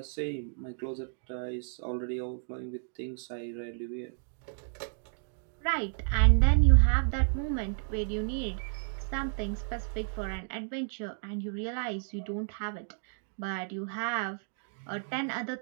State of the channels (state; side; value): silent; left; digital silence